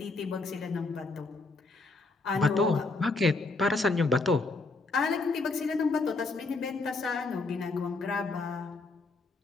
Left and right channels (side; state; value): right; quieter; 3.6 dB